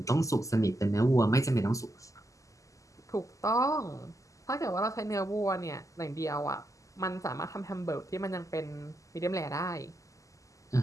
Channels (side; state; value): right; late; 0.16 ms